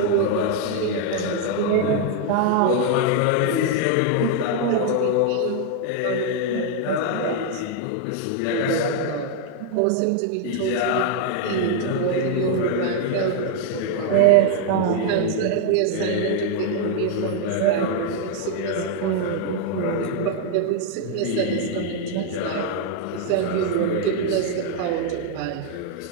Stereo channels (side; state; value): both; different; correlation 0.00